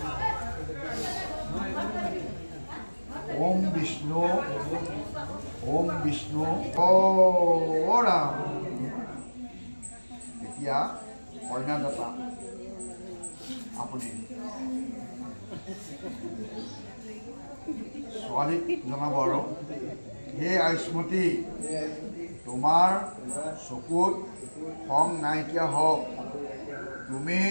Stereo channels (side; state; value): both; inverted; correlation -1.00